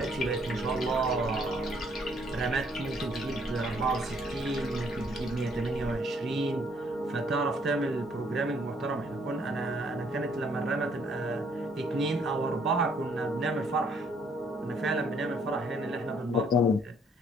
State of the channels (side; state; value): both; normal; correlation 0.65